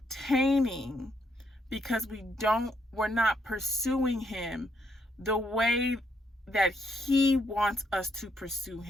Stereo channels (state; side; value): normal; both; correlation 0.75